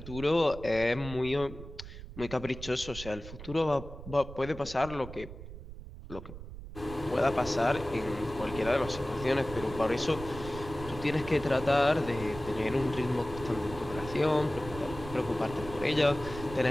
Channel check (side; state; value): right; noise; rumble, 12 dB below the sound